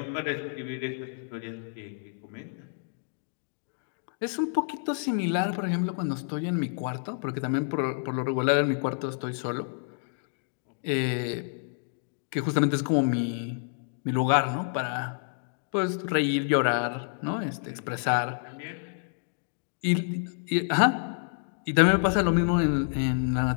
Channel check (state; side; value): silent; right; digital silence